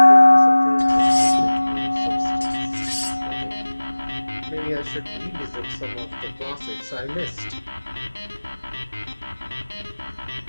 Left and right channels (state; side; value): inverted; both; correlation -1.00